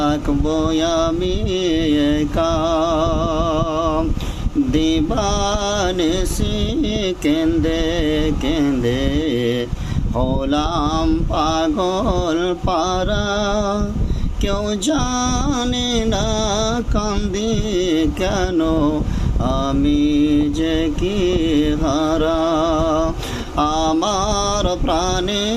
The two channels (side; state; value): both; identical; correlation 1.00